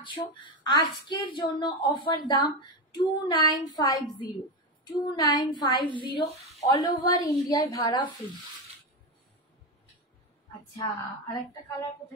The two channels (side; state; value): both; normal; correlation 0.13